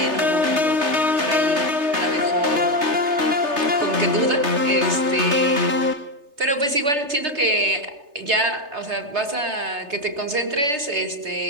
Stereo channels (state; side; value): late; left; 3.3 ms